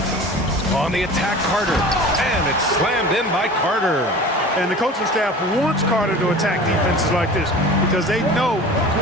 On the attack, Carter. And it's slammed in by Carter. And the coaching staff wants Carter to attack defenses like this because they know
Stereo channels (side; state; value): both; normal; correlation 0.39